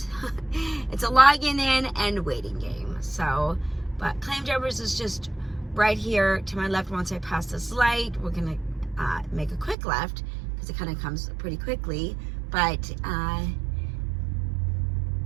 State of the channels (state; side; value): drops out; left; at 9.8 s